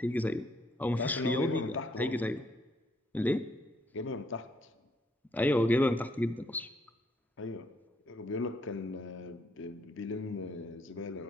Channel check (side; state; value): both; normal; correlation 0.71